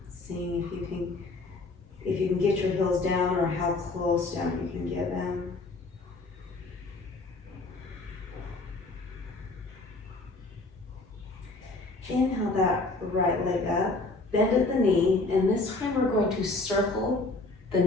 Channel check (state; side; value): quieter; right; 3.3 dB